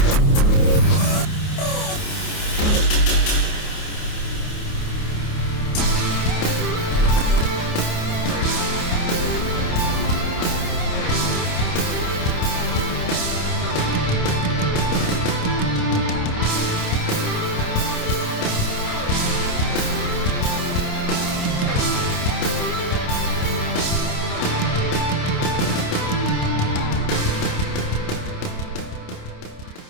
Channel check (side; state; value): right; late; 28 ms